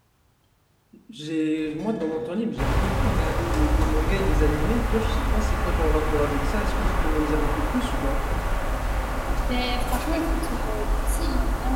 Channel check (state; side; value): identical; both; correlation 1.00